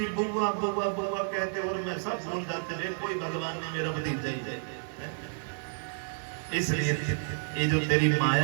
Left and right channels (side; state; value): left; silent; digital silence